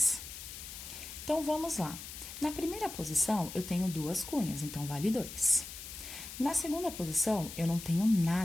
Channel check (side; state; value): left; noise; hiss, 11 dB below the sound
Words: Então, vamos lá. Na primeira posição, eu tenho 2 cunhas, então vale 2. Na segunda posição, eu não tenho